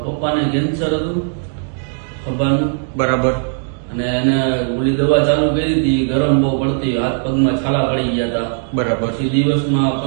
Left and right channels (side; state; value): left; silent; digital silence